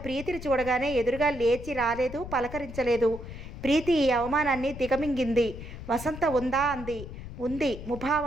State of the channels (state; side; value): noise; left; rumble, 11 dB below the sound